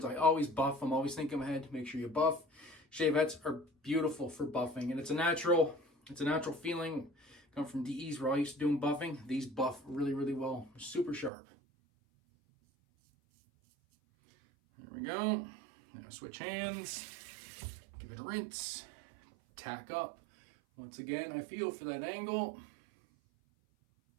I always buff. I'm always thinking ahead. Make sure you buff. Shavettes are beautiful for buffing, and it's a natural feeling. Come from DEs where I used to doing buffing. These buff really, really well. Super sharp. There we go. Now switch hands. Give it a rinse. Tack up. Once again, I feel for that angle.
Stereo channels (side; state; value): left; drops out; at 11.3 s